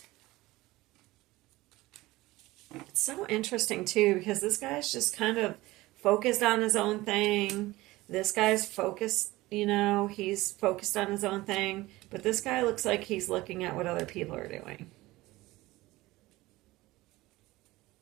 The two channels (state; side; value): quieter; left; 19.1 dB